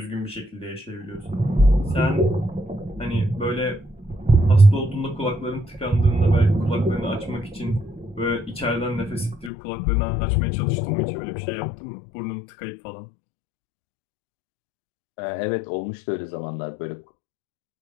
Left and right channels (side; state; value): right; drops out; at 9.5 s